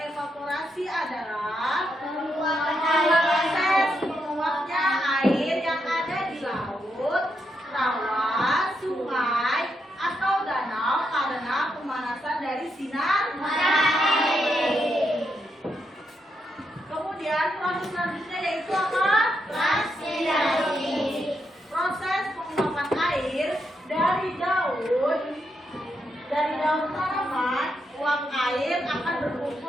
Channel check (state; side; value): normal; both; correlation 0.81